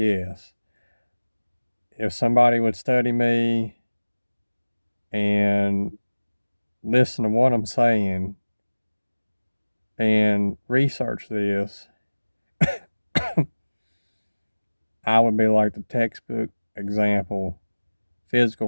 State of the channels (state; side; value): inverted; both; correlation -1.00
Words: If somebody would study me and listen to what I'm saying and research this, I would be like the textbook example,